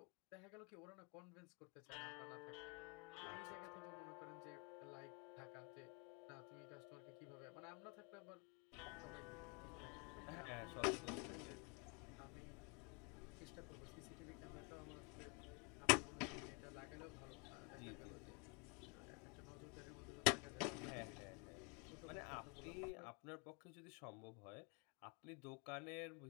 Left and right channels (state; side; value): quieter; right; 30.3 dB